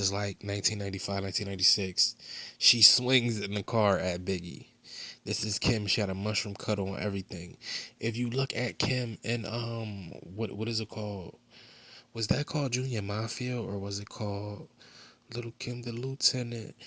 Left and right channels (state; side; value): identical; both; correlation 1.00